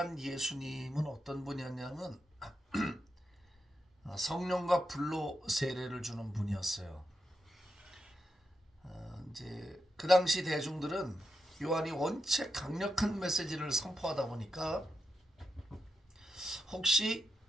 예수님은 어떤 분이었냐면 성령과 불로 세례를 주는 분이었어요. 이제 그 당시 대중들은 요한이 원체 강력한 메시지를 선포하다 보니까 혹시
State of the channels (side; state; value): both; normal; correlation 0.86